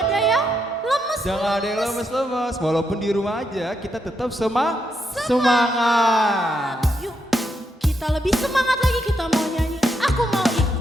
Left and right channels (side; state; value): both; normal; correlation 0.80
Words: ada yang lemes. Jangan ada yang lemes-lemes. Walaupun di rumah aja, kita tetap semangat. Yuk, kita lebih semangat lagi, kita mau nyanyi Aku Mau